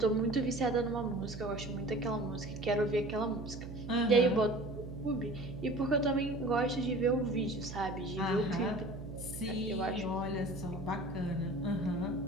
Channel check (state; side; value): noise; right; hum, 10 dB below the sound